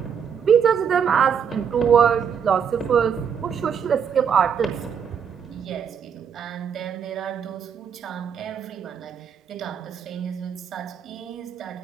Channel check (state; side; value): quieter; left; 7.3 dB